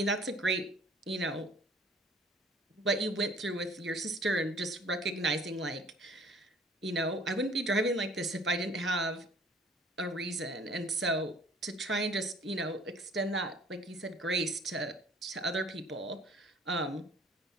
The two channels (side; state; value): both; normal; correlation 0.53